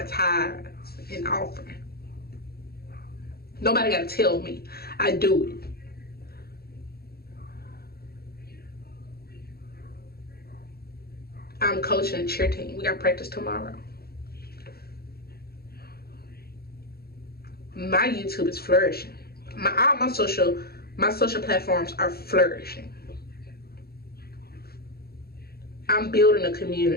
tithes and offering. Nobody got to tell me. I do it. I'm coaching a cheer team. We got practice tomorrow. My YouTube is flourishing. All my social platforms are flourishing. I'm building a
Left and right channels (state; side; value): late; right; 0.45 ms